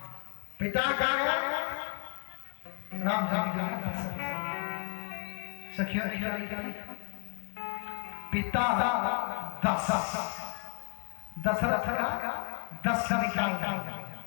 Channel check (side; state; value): right; quieter; 37.6 dB